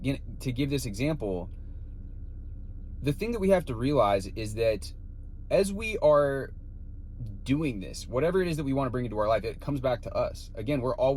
this example. The thing that we have to realize is that as we are doing this, whatever it is that we want to bring into our life, it comes back to us. Again, we're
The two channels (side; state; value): both; identical; correlation 1.00